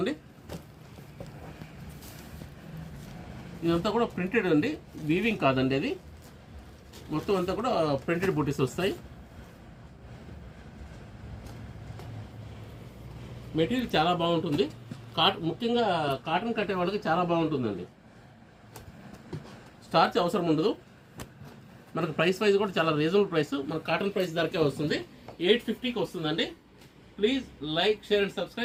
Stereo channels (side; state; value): both; identical; correlation 1.00